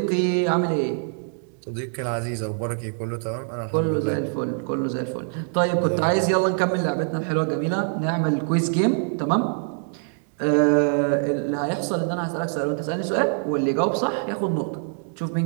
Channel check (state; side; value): silent; left; 57 dB below the other